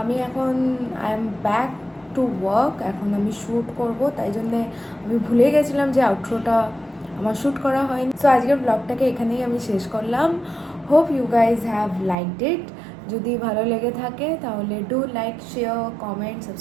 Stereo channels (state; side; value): drops out; left; at 12.2 s